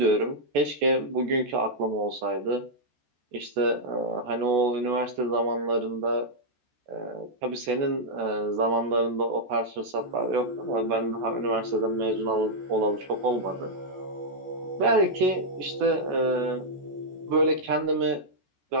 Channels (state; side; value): late; left; 14 ms